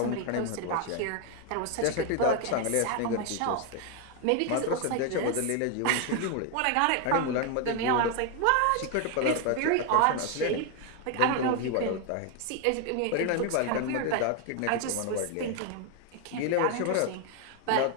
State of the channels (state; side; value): different; both; correlation 0.01